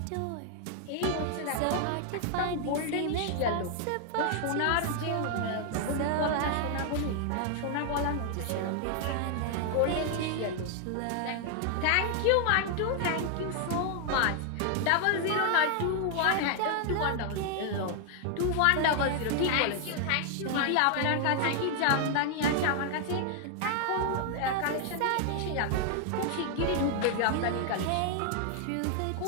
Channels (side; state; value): both; different; correlation 0.00